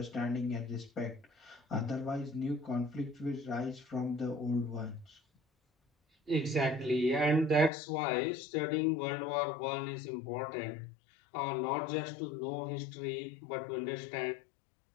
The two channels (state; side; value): drops out; right; at 7.7 s